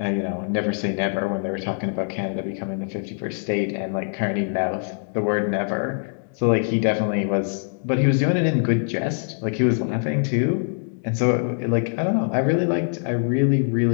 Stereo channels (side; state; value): right; silent; digital silence